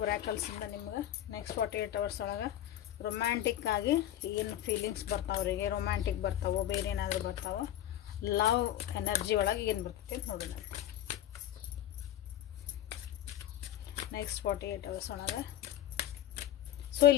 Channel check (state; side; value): quieter; right; 12.1 dB